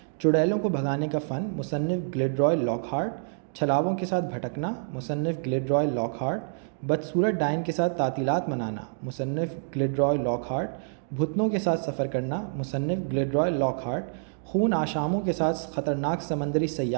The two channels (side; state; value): left; silent; digital silence